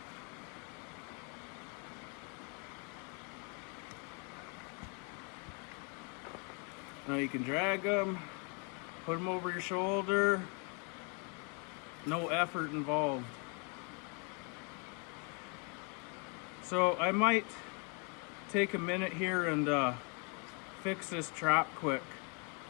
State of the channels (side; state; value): right; quieter; 35.9 dB